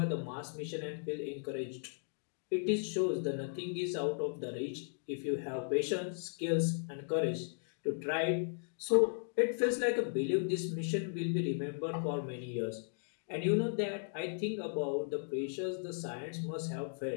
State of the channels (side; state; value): right; silent; digital silence